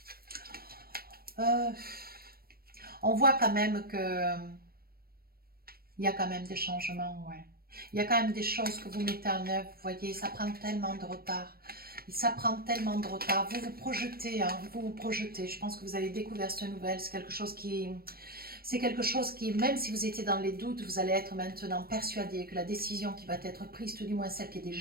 On voit quand même que il y a quand même des changements, ouais. Il y a quand même des choses que vous mettez en œuvre, vous voyez, ça prend tellement de retard. Ça prend tellement de retard. Vous vous projetez, hein, vous vous projetez. Je pense que vous avez découvert cette nouvelle. C'est quelque chose qui... C'est quelque chose qui, même si vous étiez dans les doutes, vous allez être maintenant persuadé que la décision qui va être prise, tout du moins celle qui est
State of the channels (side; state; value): left; late; 0.44 ms